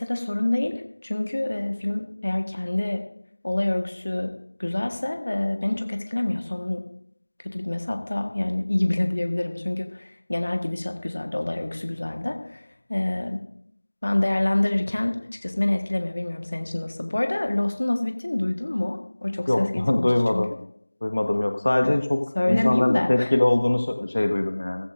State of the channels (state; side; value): inverted; both; correlation -1.00